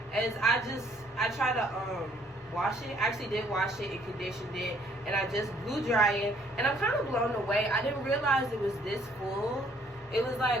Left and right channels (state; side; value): normal; both; correlation 0.63